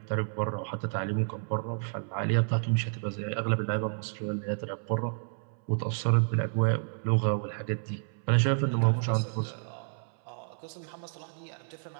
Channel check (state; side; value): silent; left; 58 dB below the other